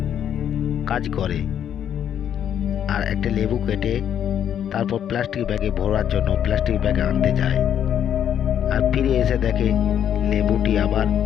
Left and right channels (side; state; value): right; quieter; 9.4 dB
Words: কাজ করে আর একটা লেবু কেটে তারপর প্লাস্টিক ব্যাগে ভরার জন্য প্লাস্টিক ব্যাগে আনতে যায়, আর ফিরে এসে দেখে লেবুটি আবার